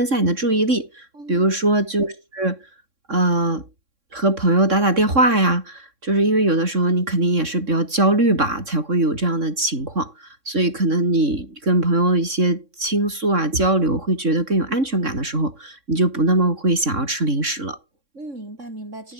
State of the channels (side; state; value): left; late; 3.6 ms